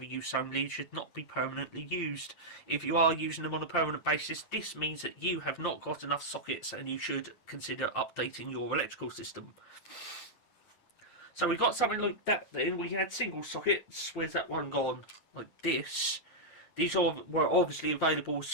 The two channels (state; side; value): late; right; 9.2 ms